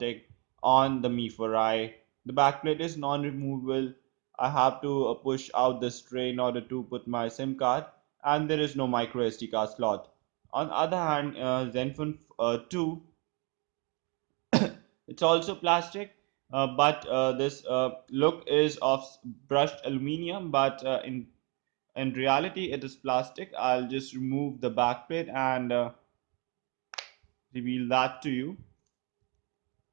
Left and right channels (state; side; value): quieter; left; 31.7 dB